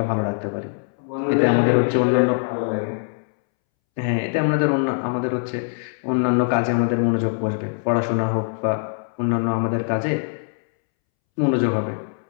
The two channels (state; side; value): silent; right; 64 dB below the other